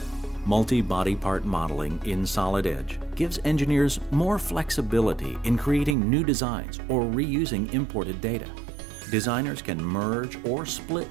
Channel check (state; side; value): drops out; left; at 6.0 s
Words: Multi-body part modeling in Solid Edge gives engineers more flexibility in creating new designs or reusing imported data. Designers can merge or split